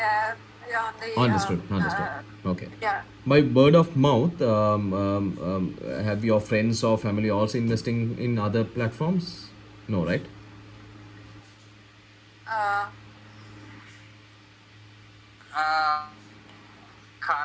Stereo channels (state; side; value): identical; both; correlation 1.00